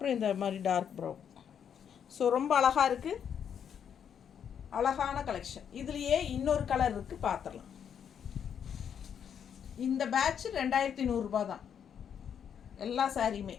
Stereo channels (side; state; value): right; quieter; 8.2 dB